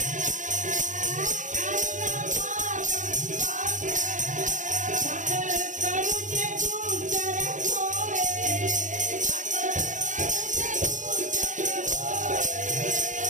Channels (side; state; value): left; late; 0.36 ms